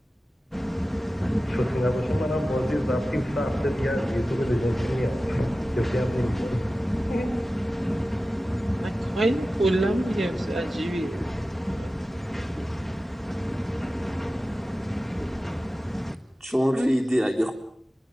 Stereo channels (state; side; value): normal; both; correlation 0.95